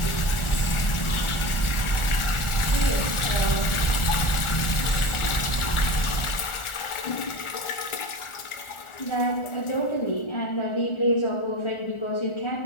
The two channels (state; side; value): late; right; 1.4 ms